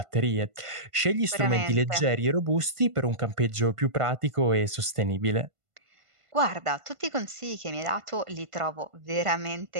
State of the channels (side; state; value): left; late; 1.5 ms